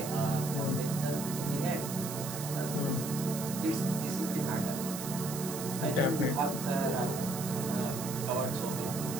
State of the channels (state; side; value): noise; right; hiss, 8 dB below the sound